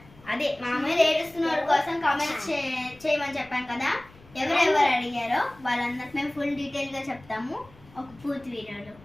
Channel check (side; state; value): left; noise; rumble, 25 dB below the sound